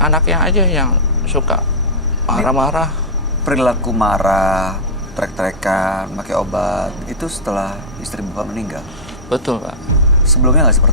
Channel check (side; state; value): both; normal; correlation -0.11